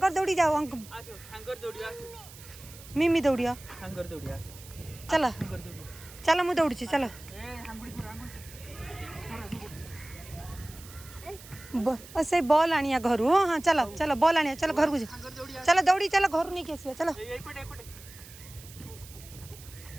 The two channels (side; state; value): right; noise; hiss, 18 dB below the sound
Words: दौड़ी जाओ अंकल शंकर दौड़ी आसो मिमी दौड़िया शंकर दौड़ी आसो चलो चलो मु दौड़ी चलो से बॉल आनिया घर हाँ चलो चलो बॉल आनिया चलो घर को चलो दौड़ी चलो घर नहीं कैसे चलो